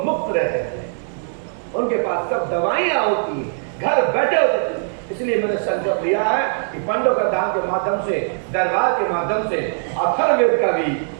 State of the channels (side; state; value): left; silent; 65 dB below the other